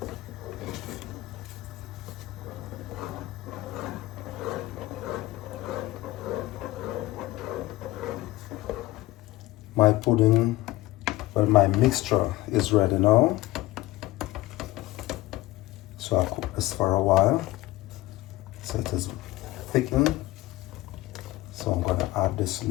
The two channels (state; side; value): quieter; right; 17.5 dB